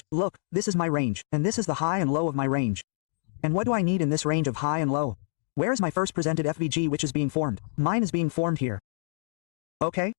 Look, this is my range, and this is the high and low of my range. And what do I need in this range of high and low? Where is my first presented FVG which is being formed? Mine is being formed here. Okay,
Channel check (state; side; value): silent; right; digital silence